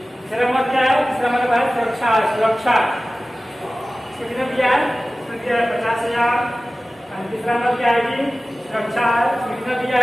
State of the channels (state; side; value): normal; both; correlation 0.96